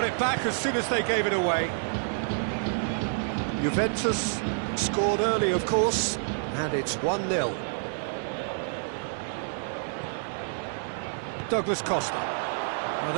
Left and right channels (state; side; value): silent; left; digital silence